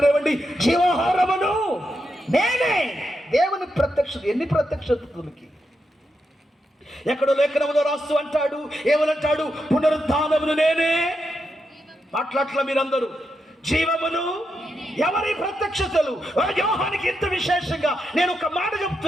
జీవాహారమును నేనే. దేవుని ప్రత్యక్షత. ఎన్ని ప్రత్యక్షతలకి! ఎక్కడో లేఖనములో రాస్తూ అంటాడు, ఏమనంటాడు? పునరుద్ధానమును నేనే. మాట్లాడట్ల మీరందరూ. జీవమును ఎవరి ప్రత్యక్షతలు? యోహానికి ఎంత విశేషంగా నేను ఒక మాట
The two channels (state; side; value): normal; both; correlation 0.85